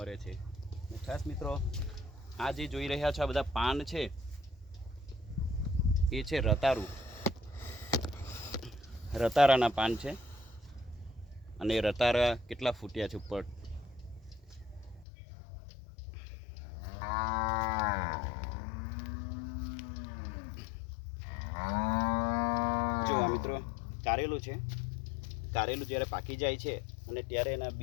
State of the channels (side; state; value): right; drops out; at 15.1 s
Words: છે. ખાસ મિત્રો, આ જે જોઈ રહ્યા છો આ બધા પાન છે, એ છે રતારું, રતારાના પાન છે. અને રતારા કેટલા ફૂટ્યા છે ઉપર. જો આ મિત્રો કારેલું છે. કારેલું જ્યારે પાકી જાય છે અને ત્યારે એના